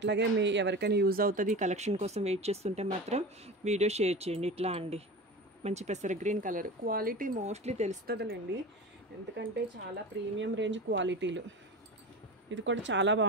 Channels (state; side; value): normal; both; correlation 0.30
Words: మీ ఎవరికైనా యూజ్ అవుతుంది కలెక్షన్ కోసం వెయిట్ చేస్తుంటే మాత్రం వీడియో షేర్ చేయండి. ఇట్లా అండి, మంచి పెసర గ్రీన్ కలర్. క్వాలిటీ మోస్ట్లీ తెలుస్తుందిలేండి, ఎందుకంటే చాలా ప్రీమియం రేంజ్ క్వాలిటీలు. ఇది కూడా చాలా